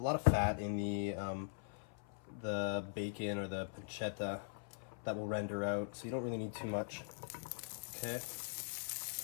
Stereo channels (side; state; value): right; silent; 50 dB below the other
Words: of fat in the bacon or the pancetta that will render out, so you don't really need too much. Okay,